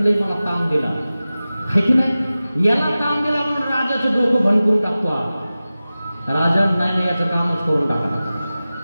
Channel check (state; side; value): inverted; both; correlation -0.96